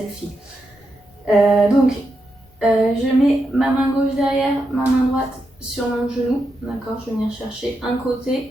Je mets ma main gauche derrière, ma main droite sur mon genou. D'accord, je vais venir chercher un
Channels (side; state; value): both; normal; correlation 0.85